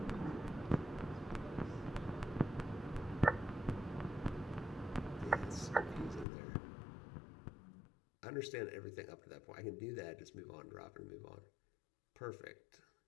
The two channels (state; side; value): drops out; right; at 6.2 s